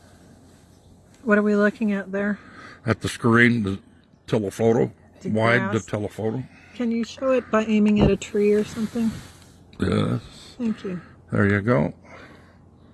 What are we looking at there? At the screen, the telephoto, wide the telephoto. Can you show it by aiming at a tree or something? Yes. Thank you. There you go.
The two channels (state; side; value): identical; both; correlation 1.00